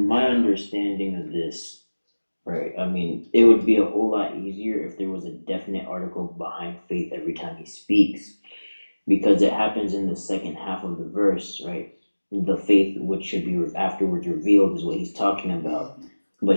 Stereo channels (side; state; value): both; inverted; correlation -1.00